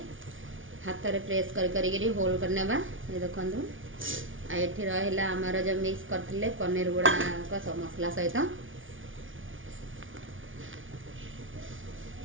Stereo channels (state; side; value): late; left; 0.57 ms